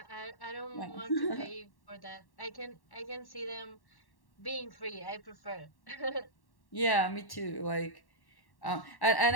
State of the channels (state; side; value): late; right; 1.1 ms